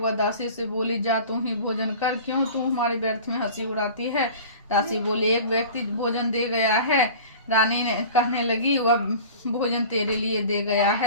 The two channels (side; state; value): both; inverted; correlation -0.40